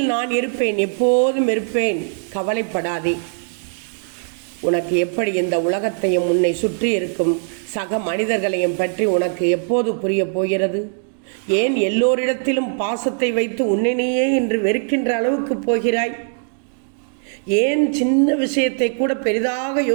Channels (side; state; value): left; silent; 61 dB below the other